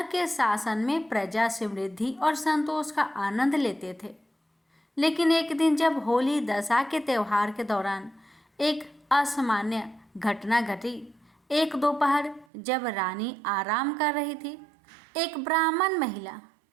के शासन में प्रजा समृद्धि और संतोष का आनंद लेते थे। लेकिन एक दिन जब होली दशा के त्योहार के दौरान एक असामान्य घटना घटी। एक दोपहर जब रानी आराम कर रही थी, एक ब्राह्मण महिला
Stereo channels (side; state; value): left; drops out; at 12.5 s